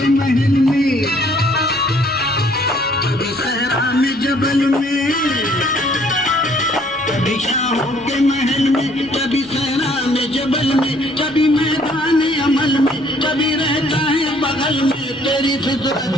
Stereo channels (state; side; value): normal; both; correlation 0.61